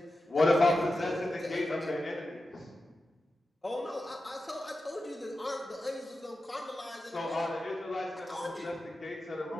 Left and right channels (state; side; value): normal; both; correlation 0.91